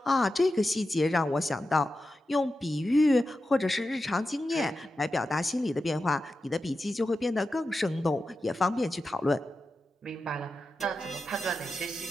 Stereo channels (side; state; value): both; normal; correlation 0.91